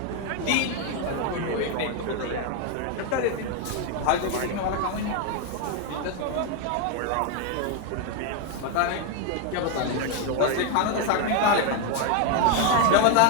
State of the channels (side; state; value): both; different; correlation 0.01